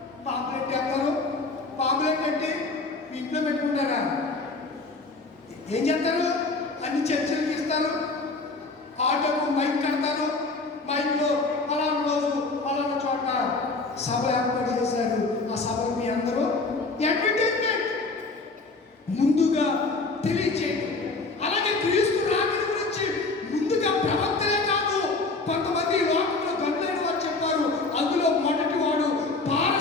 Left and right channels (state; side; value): quieter; right; 3.6 dB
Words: పాంప్లెట్ వేస్తారు. పాంప్లెట్ అంటే మీ ఇంట్లో పెట్టుకుంటారా? ఏం చేస్తారు? అన్ని చర్చలకు ఇస్తారు. ఆటోకు మైక్ కడతారు. మైక్లో పలానా రోజు పలానా చోట సభ ఏర్పాటు చేశారు. ఆ సభకు మీ అందరూ అడ్వర్టైజ్మెంట్ ముందుగా తెలియచేయండి. అలాగే క్రీస్తు రాకడ గురించి ముందుగా ప్రవక్తలే కాదు కొంతమంది లోకంలో గనులైన వారు చెప్పారు. అందులో మొదటి వాడు